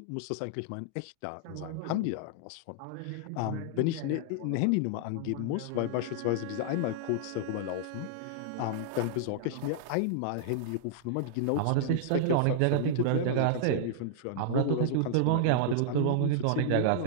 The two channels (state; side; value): different; both; correlation -0.01